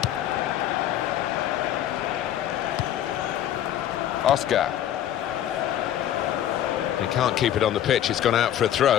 Oscar. He can't keep it on the pitch, it's gone out for a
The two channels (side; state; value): right; quieter; 11.3 dB